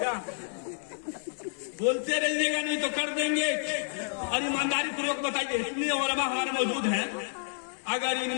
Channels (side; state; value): right; silent; digital silence